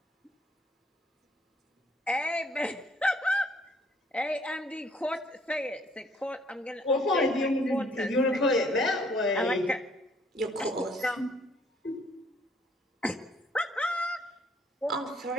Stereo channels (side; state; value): both; normal; correlation 0.62